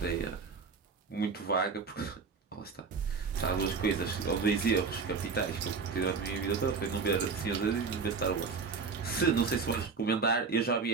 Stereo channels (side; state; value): left; quieter; 5.0 dB